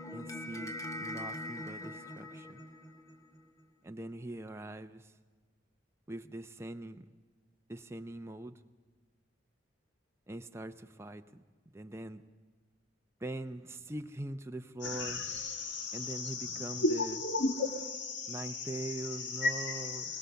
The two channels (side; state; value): both; normal; correlation 0.34